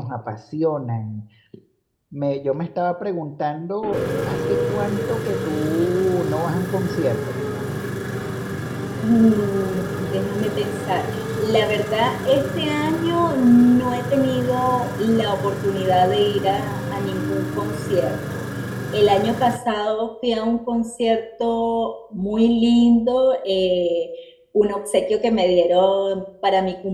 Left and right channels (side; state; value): both; identical; correlation 1.00